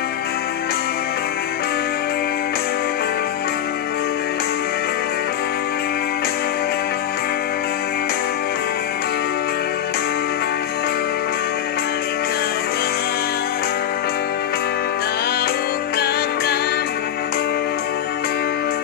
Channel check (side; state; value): right; quieter; 10.2 dB